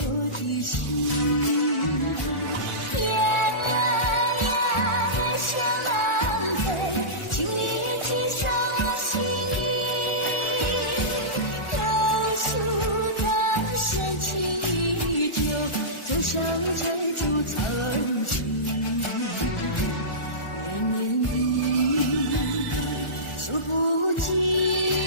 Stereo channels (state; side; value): late; right; 1.4 ms